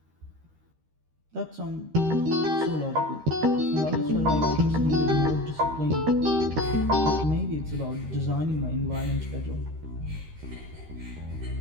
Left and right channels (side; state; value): left; late; 13 ms